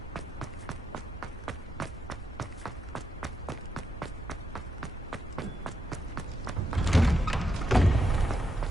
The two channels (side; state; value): both; normal; correlation 0.82